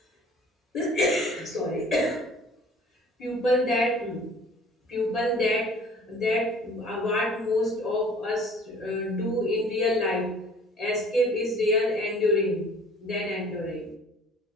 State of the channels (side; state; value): both; normal; correlation 0.50